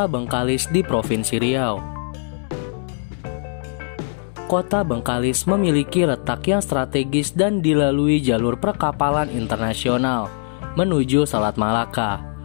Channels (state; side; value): silent; right; 65 dB below the other